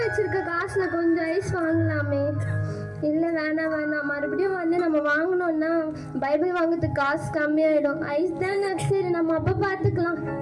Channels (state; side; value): identical; both; correlation 1.00